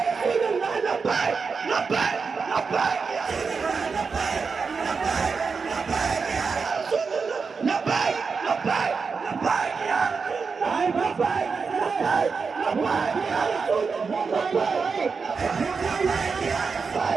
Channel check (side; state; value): left; quieter; 5.1 dB